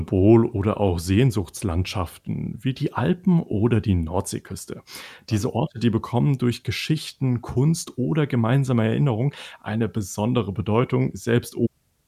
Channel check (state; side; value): identical; both; correlation 1.00